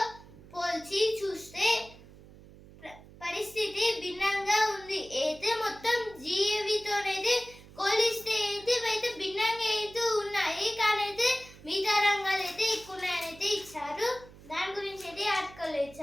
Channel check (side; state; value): right; noise; hum, 20 dB below the sound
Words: పోల్చి చూస్తే పరిస్థితి భిన్నంగా ఉంది. అయితే మొత్తం జిఏవితోనైతే పోలిస్తే అయితే భిన్నంగా అయితే ఉన్నాయి. కానీ అయితే మిగతా రంగాలు అయితే ఎక్కువ ఉన్నాయని అయితే ఇచ్చారు. దాని గురించి అయితే ఆర్టికల్